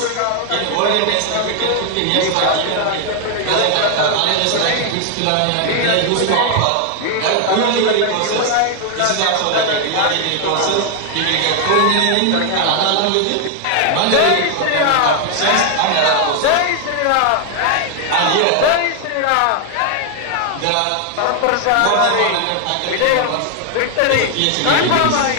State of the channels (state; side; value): different; both; correlation 0.00